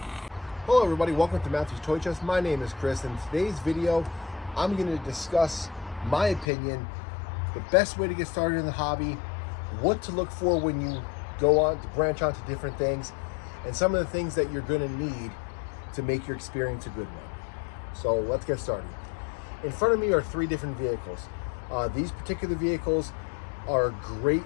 Hello everybody, welcome to Matthew's Toy Chest. My name is Chris. In today's video, I'm going to discuss my opinion, the best way to get started in the hobby, what to look for when you go on to branch onto different things, and some of the things that you're going to need to make your experience a good one. So let's get started. In front of me are three different vehicles. These particular vehicles are a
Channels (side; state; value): right; drops out; at 6.5 s